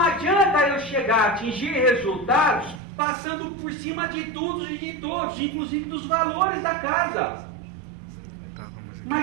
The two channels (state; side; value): drops out; left; at 2.8 s